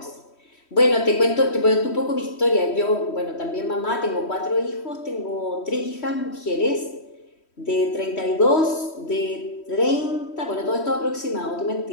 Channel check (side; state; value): right; late; 3.1 ms